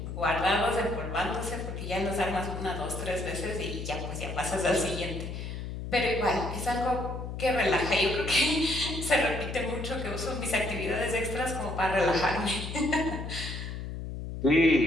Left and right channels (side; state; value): left; noise; hum, 7 dB below the sound